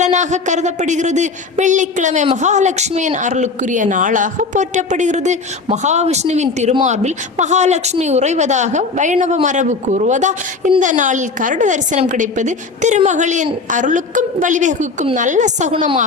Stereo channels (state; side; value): quieter; right; 4.2 dB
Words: கருதப்படுகிறது. வெள்ளிக்கிழமை மகாலட்சுமியின் அருளுக்குரிய நாளாக போற்றப்படுகிறது. மகாவிஷ்ணுவின் திருமார்பில் மகாலட்சுமி உறைவதாக வைணவ மரபு கூறுவதால் இந்த நாளில் கருட தரிசனம் கிடைப்பது திருமகளின் அருளுக்கும் வழிவகுக்கும் நல்ல